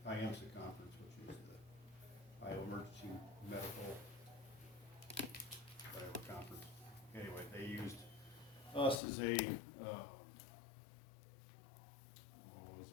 IMSA conference, which is the Iowa Emergency Medical whatever conference. Anyway, they used us as a,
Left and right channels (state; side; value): drops out; right; at 9.0 s